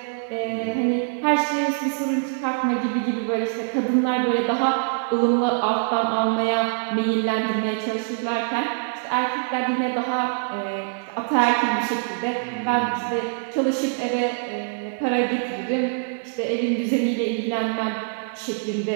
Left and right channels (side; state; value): left; silent; digital silence